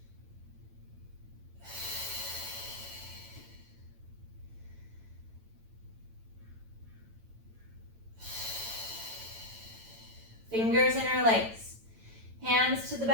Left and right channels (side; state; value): left; late; 9.0 ms